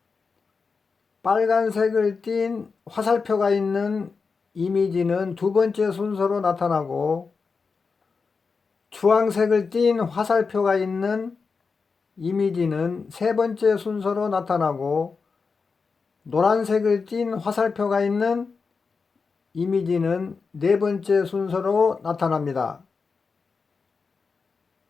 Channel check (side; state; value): right; quieter; 4.9 dB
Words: 빨간색을 띤 화살표가 있는 이미지는 두 번째 순서로 나타나고, 주황색을 띤 화살표가 있는 이미지는 세 번째 순서로 나타나고, 노란색을 띤 화살표가 있는 이미지는 네 번째 순서로 나타납니다.